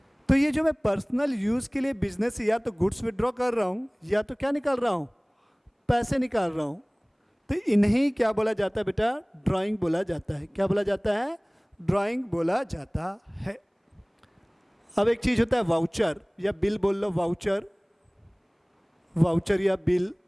तो ये जो मैं पर्सनल यूज़ के लिए बिजनेस या तो गुड्स विड्रॉ कर रहा हूँ, या तो क्या निकाल रहा हूँ, पैसे निकाल रहा हूँ, तो इन्हीं क्या बोला जाता है बेटा, ड्राइंग बोला जाता है। क्या बोला जाता है, ड्राइंग बोला जाता है। अब एक चीज़ होता है वाउचर या बिल, बोल लो वाउचर, वाउचर या बिल।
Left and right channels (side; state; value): both; identical; correlation 1.00